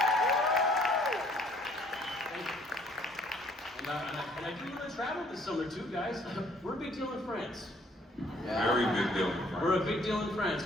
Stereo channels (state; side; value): normal; both; correlation 0.61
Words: And I do want to travel this summer too, guys. We're a big deal in France. Yeah. Very big deal. We're a big deal in France,